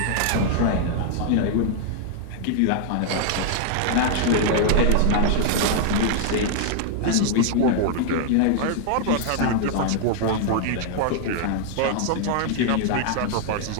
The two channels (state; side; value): different; both; correlation 0.00